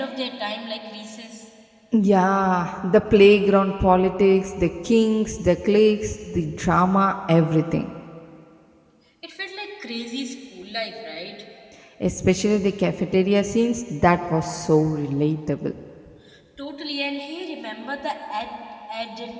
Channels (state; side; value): identical; both; correlation 1.00